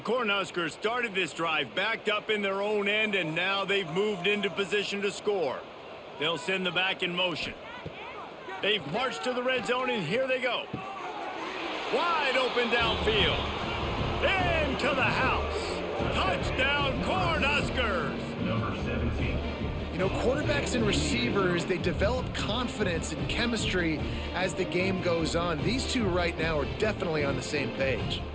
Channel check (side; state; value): both; identical; correlation 1.00